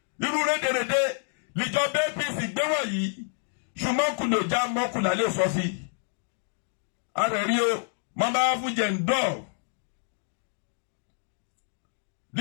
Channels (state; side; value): silent; right; 59 dB below the other